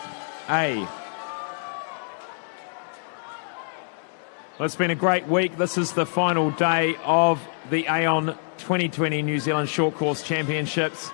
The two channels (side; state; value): right; silent; digital silence